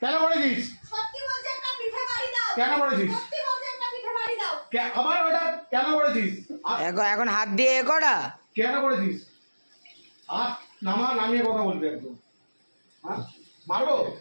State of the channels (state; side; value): inverted; both; correlation -1.00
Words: কেন করেছিস? সত্যি বলছে একটা পিঠে বাড়ি দাও। কেন করেছিস? সত্যি বলছে একটা পিঠে বাড়ি দাও। আবার ওটা কেন করেছিস? এখন হাত দিয়ে এ করা কেন করেছিস? আর নামিয়ে কথা বলবি একদম। হ্যাঁ,